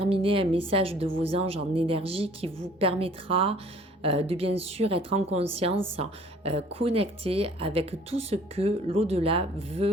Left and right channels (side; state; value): both; normal; correlation 0.54